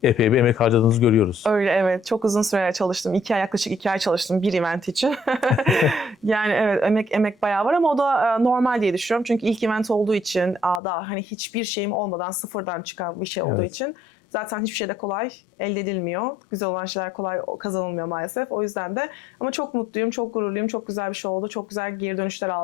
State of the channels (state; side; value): drops out; right; at 10.8 s